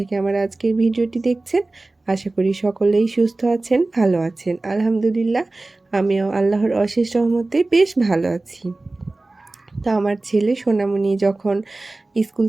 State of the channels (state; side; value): quieter; left; 3.1 dB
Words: আমার আজকের ভিডিওটি দেখছেন, আশা করি সকলেই সুস্থ আছেন, ভালো আছেন। আলহামদুলিল্লাহ, আমিও আল্লাহর অশেষ রহমতে বেশ ভালো আছি। তো আমার ছেলে সোনামণি যখন স্কুল